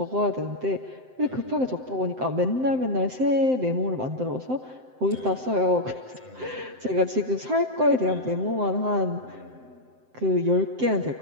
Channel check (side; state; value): left; late; 7.8 ms